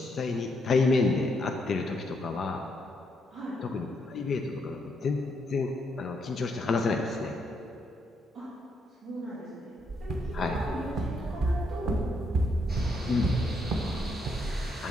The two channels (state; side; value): normal; both; correlation 0.76